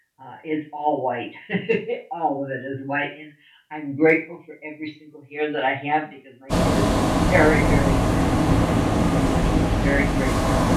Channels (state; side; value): identical; both; correlation 1.00